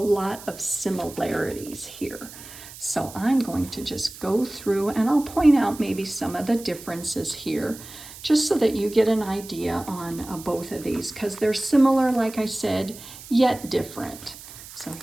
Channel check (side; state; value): right; noise; hiss, 16 dB below the sound